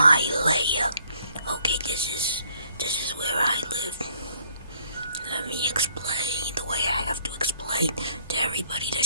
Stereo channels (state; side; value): inverted; both; correlation -0.63